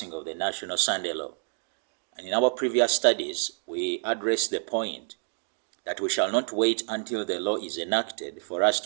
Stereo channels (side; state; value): left; silent; digital silence